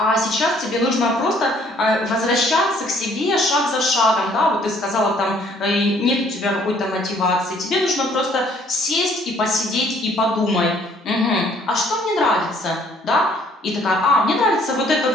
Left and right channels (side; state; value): both; normal; correlation 0.61